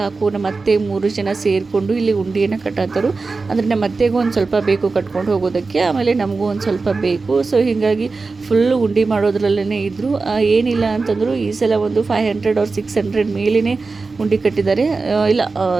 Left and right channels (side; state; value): left; quieter; 4.0 dB